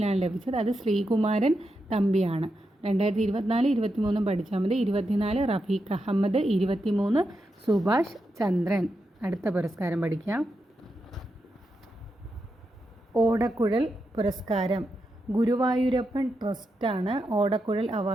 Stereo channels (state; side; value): normal; both; correlation 0.86